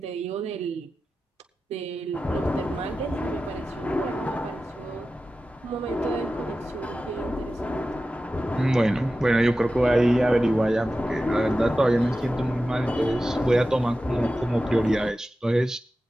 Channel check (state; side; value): normal; both; correlation 0.93